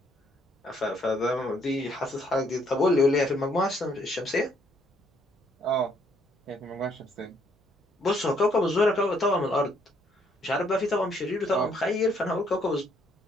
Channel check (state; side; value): normal; both; correlation 0.69